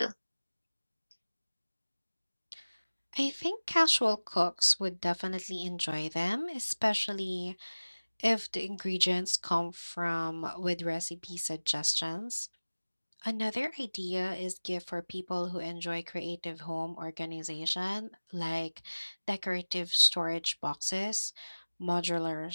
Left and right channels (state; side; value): inverted; both; correlation -1.00